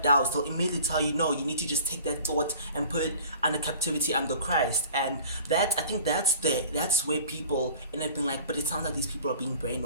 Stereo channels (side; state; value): both; inverted; correlation -0.46